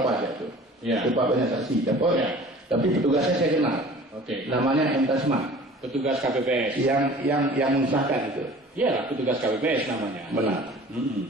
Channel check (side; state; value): both; normal; correlation 0.45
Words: aja tuh. Iya. Lupa banyak saksi. Tapi petugasnya saya kenal. Oke. Namanya M. Tasman. Petugas KPPS. Yang mensahkan itu. Iya, petugas KPPS namanya. Benar.